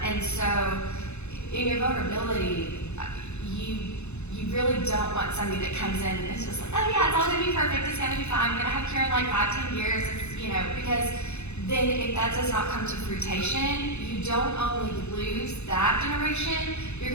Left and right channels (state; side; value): late; right; 0.81 ms